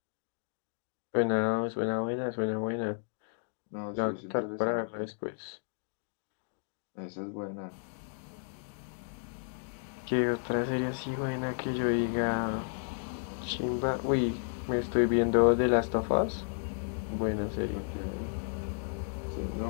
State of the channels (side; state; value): right; silent; digital silence